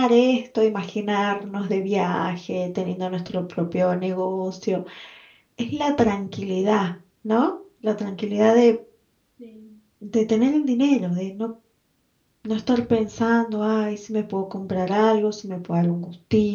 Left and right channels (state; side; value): identical; both; correlation 1.00